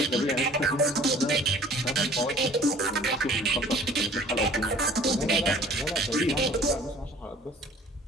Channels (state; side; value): normal; both; correlation 0.51